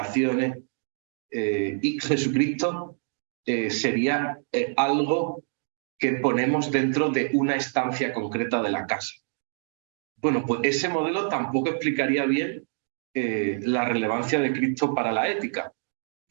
y Jesucristo sería algo que ponemos dentro de una estancia concreta de la casa. Bueno, pues ese modelo tampoco explicaría bien la relevancia de Cristo para la ética,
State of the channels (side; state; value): left; silent; digital silence